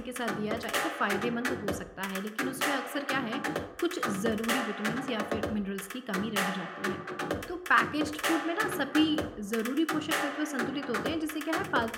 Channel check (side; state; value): both; identical; correlation 1.00